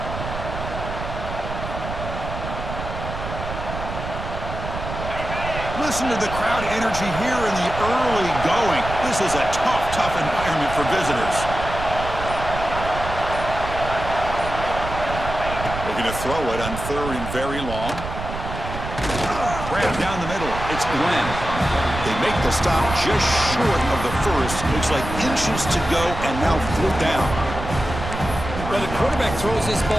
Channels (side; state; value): right; noise; rumble, 7 dB below the sound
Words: Listen to the crowd energy here in the early going. This is a tough environment for visitors. Looking to throw it on third and very long. Grab down the middle. It's Glenn. They make the stop just short of the first. Looks like inches to go, and now fourth down. Well, the quarterback throws this